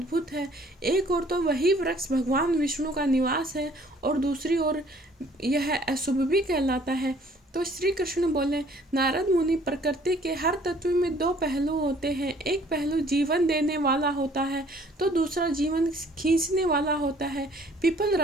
है। एक ओर तो वही वृक्ष भगवान विष्णु का निवास है और दूसरी ओर यह अशुभ भी कहलाता है। तो श्री कृष्ण बोले, नारद मुनि, प्रकृति के हर तत्व में दो पहलू होते हैं। एक पहलू जीवन देने वाला होता है तो दूसरा जीवन खींचने वाला होता है। पीपल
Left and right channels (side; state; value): both; normal; correlation 0.57